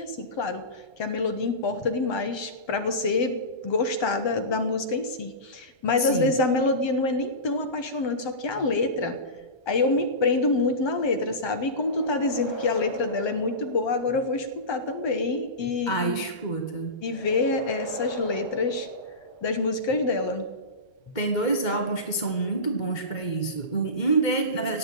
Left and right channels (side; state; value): right; late; 1.3 ms